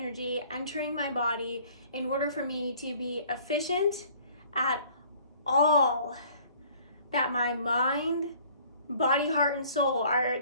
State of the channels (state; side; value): inverted; both; correlation -0.55